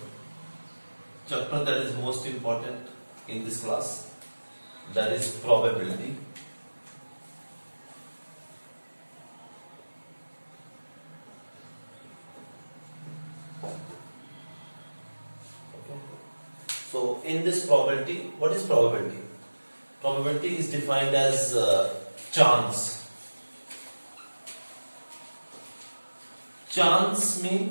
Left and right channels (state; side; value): inverted; both; correlation -1.00